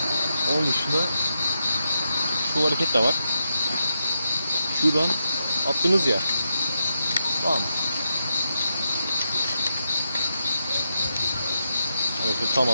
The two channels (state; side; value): inverted; both; correlation -0.85